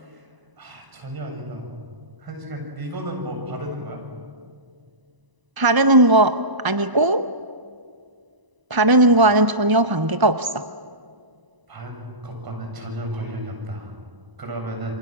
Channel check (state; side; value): late; left; 1.0 ms